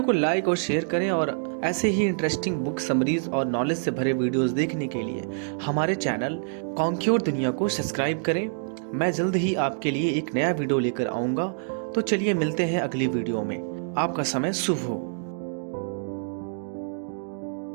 को लाइक और शेयर करें और ऐसे ही इंटरेस्टिंग बुक समरीज और नॉलेज से भरे वीडियोस देखने के लिए हमारे चैनल कॉन्क्योर दुनिया को सब्सक्राइब करें। मैं जल्द ही आपके लिए एक नया वीडियो लेकर आऊँगा। तो चलिए मिलते हैं अगली वीडियो में। आपका समय शुभ हो।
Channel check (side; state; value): left; silent; digital silence